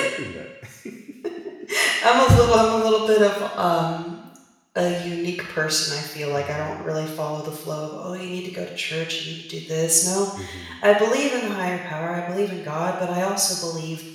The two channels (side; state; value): both; identical; correlation 1.00